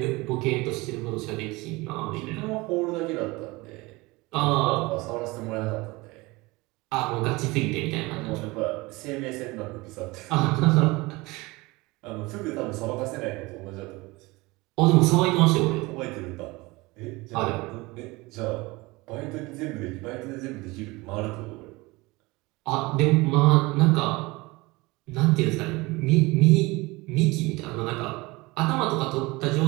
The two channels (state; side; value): quieter; left; 22.9 dB